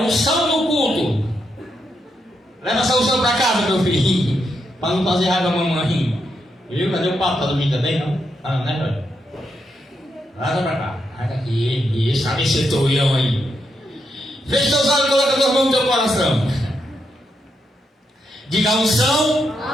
no culto. Leva essa unção para casa, meu filhinho. Para não fazer raiva a mamãe. Viu? Cadê o papo? Tá dormindo também, não? Ah, né, velho? Leva pra cá. Leva aqui. Isso, sabe esse toião aí. Feche seus olhos e coloca as mãos no teu coração. Diga: a unção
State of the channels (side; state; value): both; normal; correlation 0.82